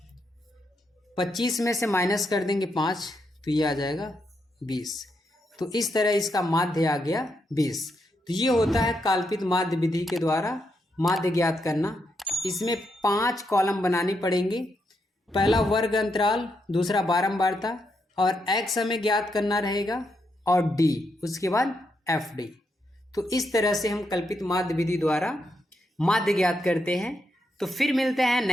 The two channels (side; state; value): both; normal; correlation 0.81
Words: 25 में से माइनस कर देंगे 5, तो ये आ जाएगा 20। तो इस तरह इसका माध्य आ गया 20। तो ये होता है कल्पित माध्य विधि के द्वारा माध्य ज्ञात करना। इसमें 5 कॉलम बनाने पड़ेंगे। पहला वर्ग अंतराल, दूसरा बारंबारता, और x हमें ज्ञात करना रहेगा, और d, उसके बाद एफ डी। तो इस तरह से हम कल्पित माध्य विधि द्वारा माध्य ज्ञात करते हैं। तो फिर मिलते हैं